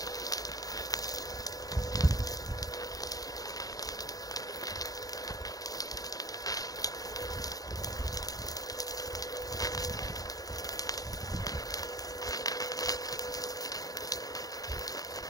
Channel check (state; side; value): late; right; 0.18 ms